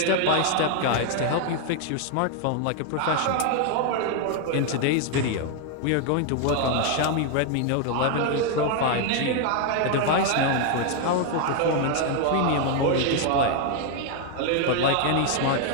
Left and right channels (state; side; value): different; both; correlation 0.00